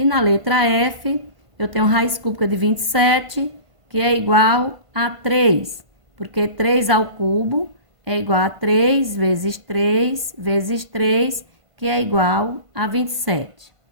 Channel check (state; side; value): late; left; 1.5 ms